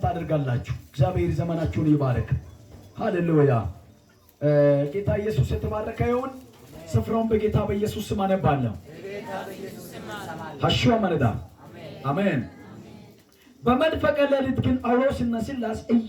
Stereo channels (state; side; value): identical; both; correlation 1.00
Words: አድርጋላችሁ። እግዚአብሔር ዘመናችሁን ይባርክ። ሃሌሉያ። ጌታ ኢየሱስ የተባረከ ይሁን። ስፍራውን በጌታ በኢየሱስ ስም አነባለሁ። ሐሽዋ መረዳ አሜን። በመንፈቀ ሌሊት ግን ጳውሎስና ሲላስ